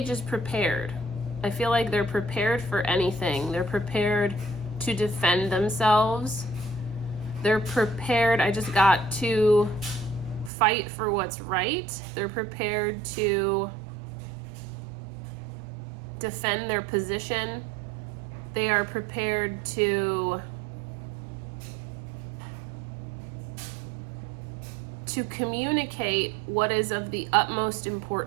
is prepared. I feel like they're prepared for anything. They're prepared to defend themselves. They're prepared, I just got to fight for what's right. They're prepared to defend their position. They are prepared to communicate what is of the utmost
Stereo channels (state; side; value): drops out; left; at 10.5 s